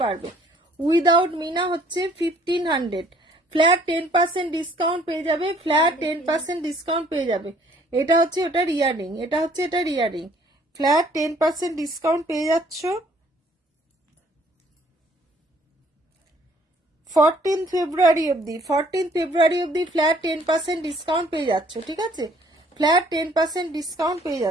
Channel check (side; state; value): both; normal; correlation 0.60